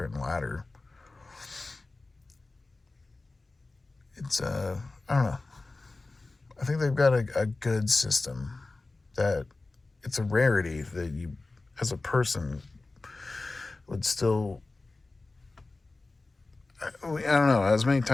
and ladder. It's, I don't know. I think they've got a good system that it's a rarity that you, as a person, would still. I don't know. As many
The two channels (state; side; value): quieter; right; 3.3 dB